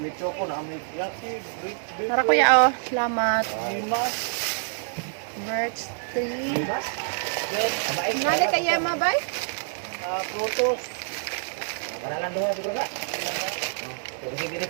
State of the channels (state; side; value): silent; left; digital silence